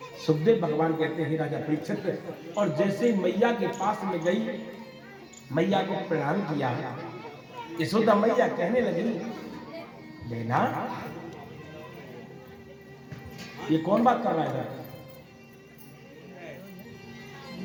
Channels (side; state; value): both; identical; correlation 1.00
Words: सुखदेव भगवान कहते हैं राजा परीक्षित, और जैसे मैया के पास में गई, मैया को प्रणाम किया, यशोदा मैया कहने लगी बेना ये कौन बात कर रहा है?